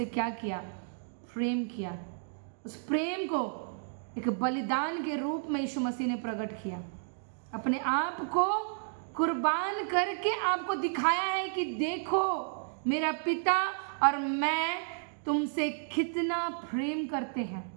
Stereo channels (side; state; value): left; silent; digital silence